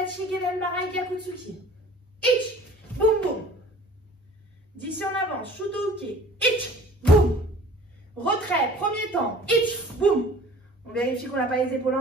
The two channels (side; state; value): both; normal; correlation 0.48